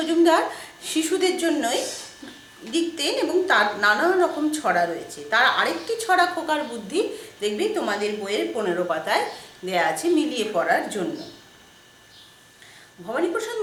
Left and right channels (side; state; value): both; identical; correlation 1.00